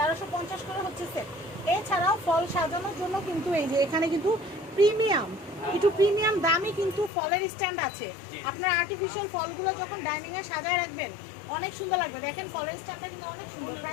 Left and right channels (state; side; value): drops out; right; at 7.1 s